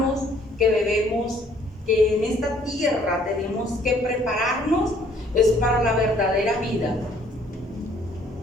que en esta tierra tenemos que prepararnos es para la verdadera vida.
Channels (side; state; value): both; normal; correlation 0.61